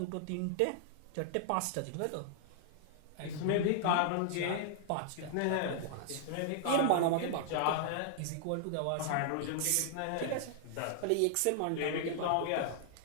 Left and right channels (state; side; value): different; both; correlation -0.01